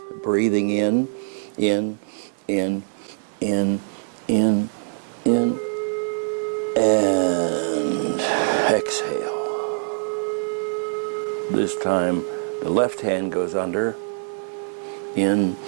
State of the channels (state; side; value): silent; left; digital silence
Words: breathing in, and exhale. This time the left hand goes under, in,